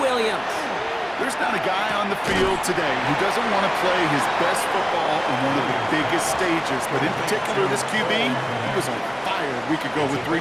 There's not a guy on the field today who doesn't want to play his best football on one of the biggest stages. But in particular, this QB, he was on fire a week ago with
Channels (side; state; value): both; identical; correlation 1.00